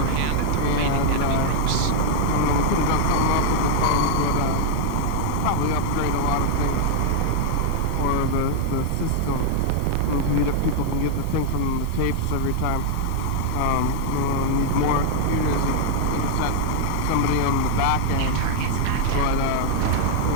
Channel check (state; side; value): different; both; correlation -0.01